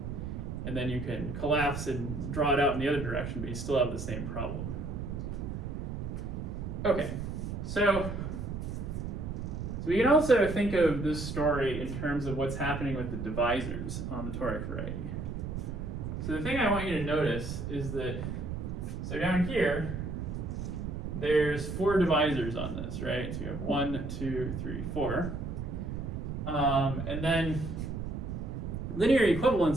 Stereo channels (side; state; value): right; noise; rumble, 5 dB below the sound